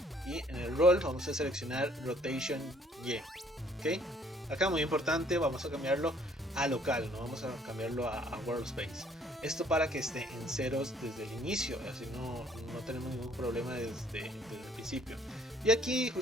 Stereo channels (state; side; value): normal; both; correlation 0.61